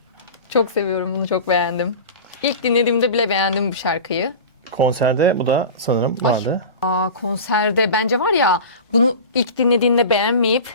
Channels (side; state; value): both; inverted; correlation -0.33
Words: Çok seviyorum bunu, çok beğendim. İlk dinlediğimde bile beğendim bu şarkıyı. Konserde bu da sanırım vardı. Konserde bence var ya, bunu ilk dinlediğinde